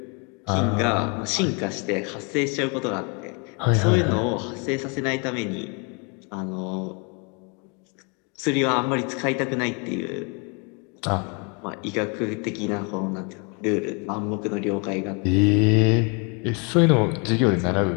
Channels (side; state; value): right; quieter; 34.1 dB